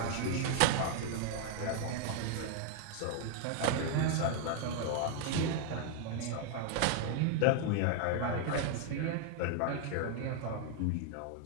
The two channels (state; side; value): different; both; correlation 0.00